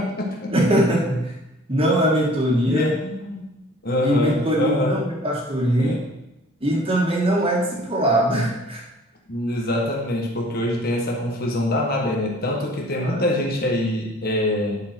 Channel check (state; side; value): normal; both; correlation 0.51